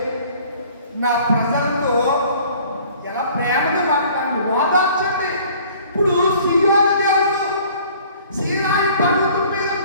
నా ప్రజలతో ఎలా ప్రేమగా మాట్లాడండి, ఓదార్చండి. ఇప్పుడు సీయోను దేవుడు సీనాయి పర్వతం మీద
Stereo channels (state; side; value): inverted; both; correlation -0.53